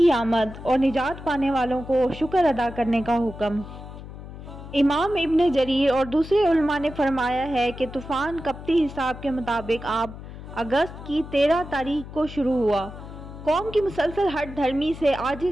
आमद और निजात पाने वालों को शुक्र अदा करने का हुक्म। इमाम इब्न जरीर और दूसरे उलमा ने फरमाया है कि तूफ़ान कप्ती हिसाब के मुताबिक आप अगस्त की 13 तारीख को शुरू हुआ। कौम की मुसलसल हट धर्मी से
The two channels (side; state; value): left; noise; hum, 13 dB below the sound